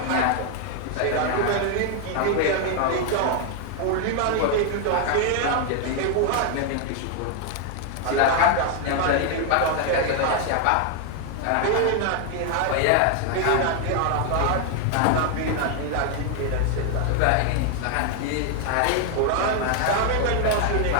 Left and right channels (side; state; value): both; different; correlation 0.00